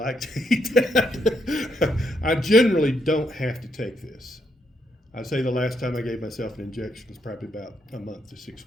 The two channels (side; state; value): both; normal; correlation 0.76